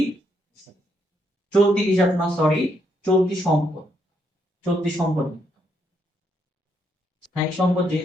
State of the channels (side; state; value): both; normal; correlation 0.75